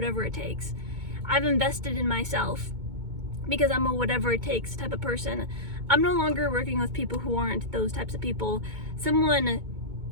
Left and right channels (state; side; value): late; left; 2.2 ms